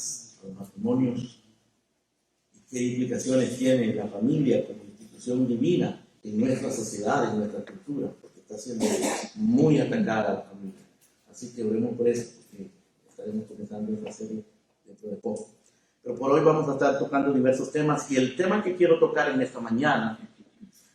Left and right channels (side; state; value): both; identical; correlation 1.00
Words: a los matrimonios, y qué implicaciones tiene la familia como institución divina en nuestra sociedad, en nuestra cultura, porque está siendo muy atacada la familia. Así que oremos por eso, porque estaremos comenzando esta serie dentro de poco. Pero por hoy vamos a estar tocando diversos temas, y el tema que quiero tocar en esta mañana